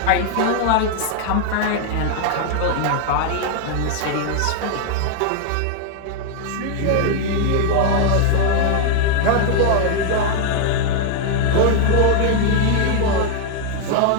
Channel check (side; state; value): both; different; correlation 0.00